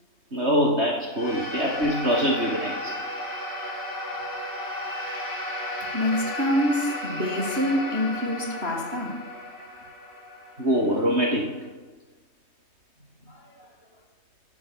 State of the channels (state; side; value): late; left; 3.0 ms